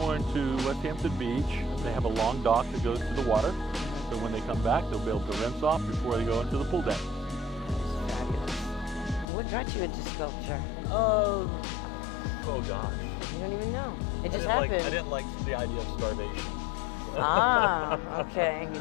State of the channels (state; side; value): drops out; right; at 9.2 s